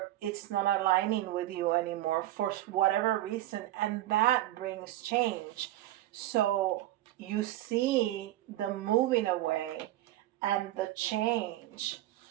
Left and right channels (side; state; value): left; quieter; 15.0 dB